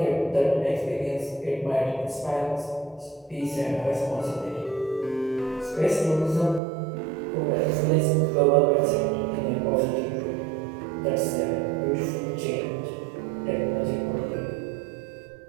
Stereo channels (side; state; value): left; drops out; at 6.6 s